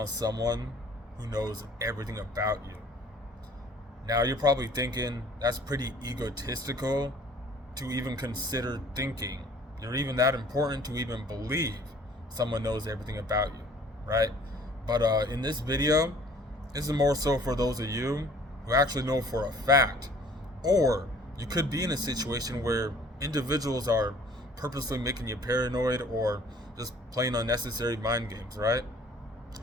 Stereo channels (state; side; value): normal; both; correlation 0.53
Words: someone who knows everything about you. Now, you're probably thinking that's pretty egotistical to even consider thinking. You're even that important to even believe someone knows everything about you, right? But in this video, this is more so for those of you who actually know for a fact, or you could be in a situation where individuals are purposely making you paranoid or just playing unnecessary mind games, right?